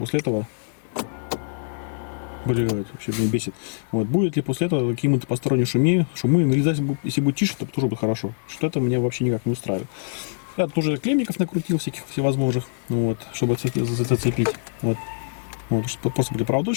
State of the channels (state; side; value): silent; right; digital silence